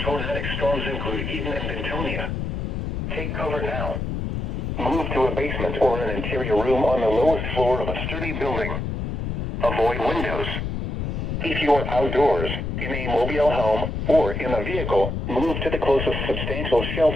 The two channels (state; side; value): noise; left; rumble, 3 dB below the sound